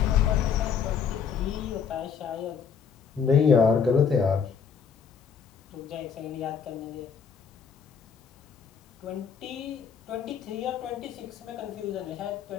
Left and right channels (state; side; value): quieter; right; 6.6 dB